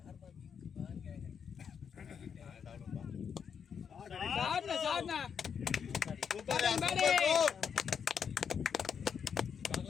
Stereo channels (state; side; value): quieter; right; 7.1 dB